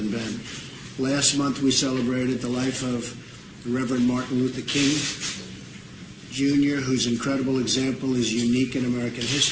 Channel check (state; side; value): identical; both; correlation 1.00